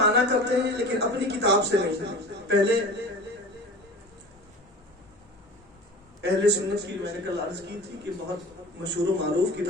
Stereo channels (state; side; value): normal; both; correlation 0.37